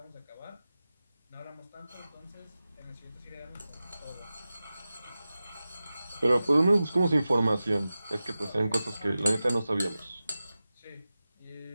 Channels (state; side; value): inverted; both; correlation -0.95